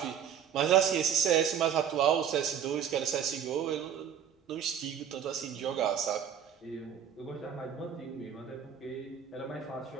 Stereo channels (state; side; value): quieter; left; 8.5 dB